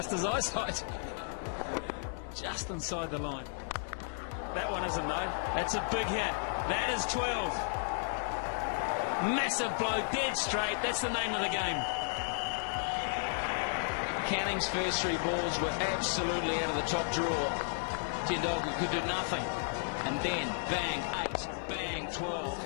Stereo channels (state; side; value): silent; right; digital silence